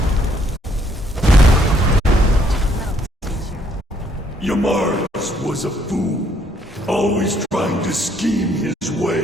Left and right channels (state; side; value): normal; both; correlation 0.68